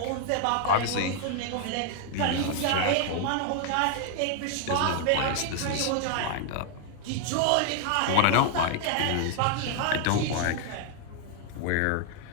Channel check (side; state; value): both; different; correlation 0.00